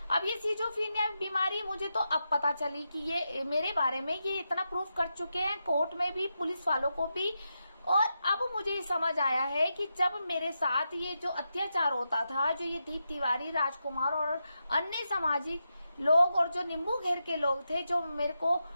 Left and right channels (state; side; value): inverted; both; correlation -0.87